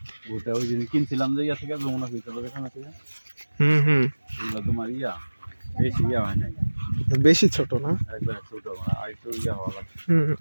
ওটা ওই দিন কিনছিলাম যে ইয়া থেকে যমুনা ফিল্টার এখানে থেকে এগুলো তোমার ইয়া বেশি ইয়া হয় নাই, বেশি ছোট না, একবার ছোট মানে আর একটু ইয়া হওয়া লাগছে।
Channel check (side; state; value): both; inverted; correlation -1.00